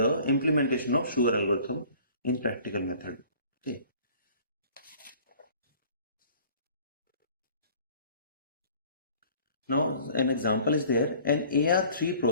implementation of Schur algorithm in practical method. Okay. Now an example is there. An AR3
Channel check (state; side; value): inverted; both; correlation -0.50